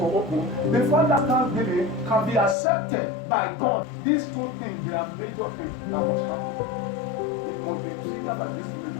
open, before that thanksgiving can be accepted by God, these two things, they are major things that must happen. It must be triggered by these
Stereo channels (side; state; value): right; drops out; at 2.6 s